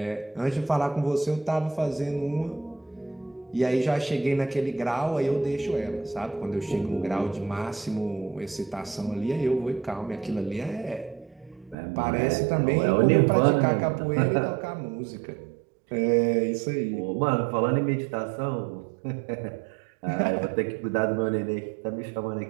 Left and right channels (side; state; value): left; drops out; at 11.8 s